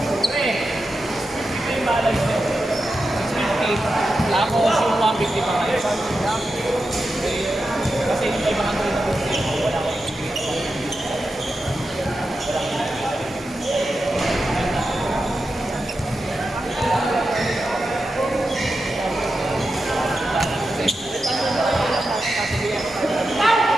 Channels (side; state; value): both; normal; correlation 0.90